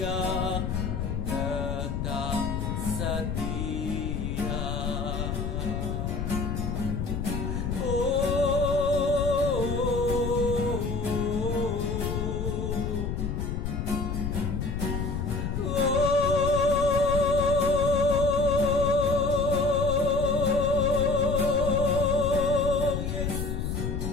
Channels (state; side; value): noise; left; rumble, 2 dB below the sound